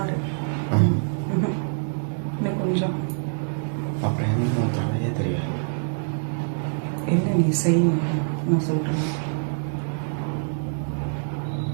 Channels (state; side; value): silent; left; digital silence